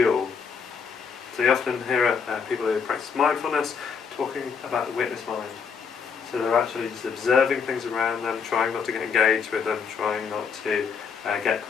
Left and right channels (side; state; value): right; quieter; 6.1 dB